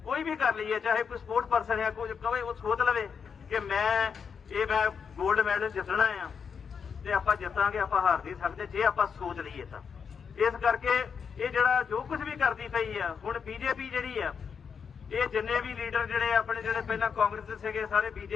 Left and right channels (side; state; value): right; quieter; 6.4 dB